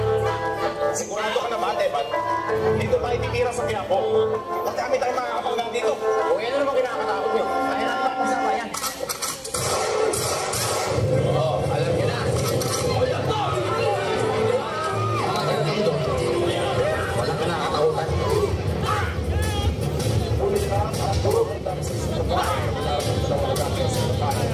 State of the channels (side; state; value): both; identical; correlation 1.00